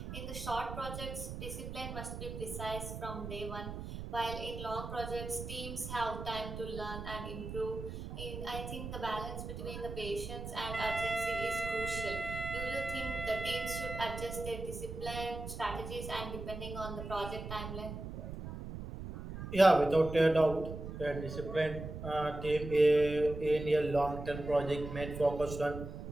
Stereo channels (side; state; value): right; noise; rumble, 8 dB below the sound